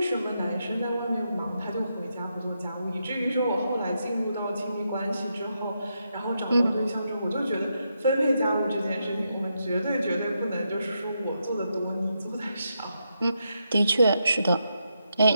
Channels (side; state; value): both; inverted; correlation -0.83